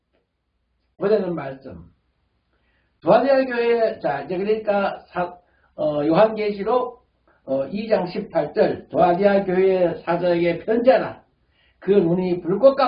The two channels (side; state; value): both; identical; correlation 1.00